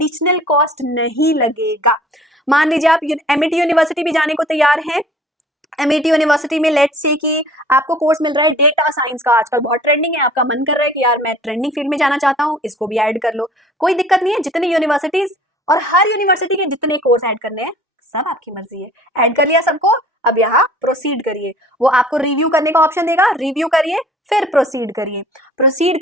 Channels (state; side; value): normal; both; correlation 0.50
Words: कॉस्ट नहीं लगेगा। मान लीजिए आप एमआईटी यूनिवर्सिटी भी जाने को तैयार हैं। एमआईटी यूनिवर्सिटी में लेट्स से कि आपको कोर्स मिल रहा है डेटा साइंस का, आजकल बहुत ट्रेंडिंग है, आपका मन कर रहा है कि यार मैं ट्रेंडिंग फील्ड में जाना चाहता हूँ, इसको भी ऐड कर लो, कोई दिक्कत नहीं है। जितनी यूनिवर्सिटीज और हर यूनिवर्सिटी के जितने कोर्स ऐड करने हैं सब आपकी मर्जी है। ऐड कर लिया सबको, अब यहाँ प्रोसीड करिए। वो आपको रिव्यू करने का ऑप्शन देगा, रिव्यू करिए फिर प्रोसीड करिए। प्रोसीड